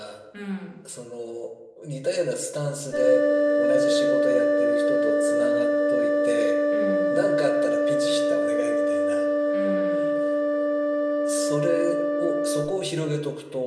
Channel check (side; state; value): both; identical; correlation 1.00